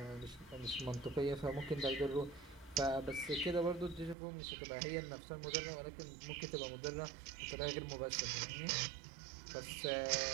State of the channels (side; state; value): left; drops out; at 4.2 s